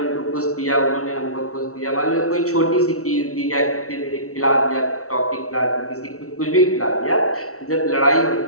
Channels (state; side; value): late; right; 0.64 ms